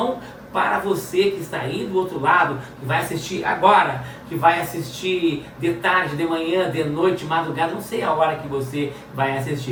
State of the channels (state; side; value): identical; both; correlation 1.00